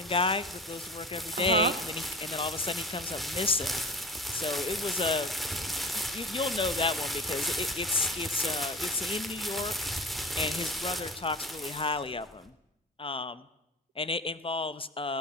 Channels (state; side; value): normal; both; correlation 0.35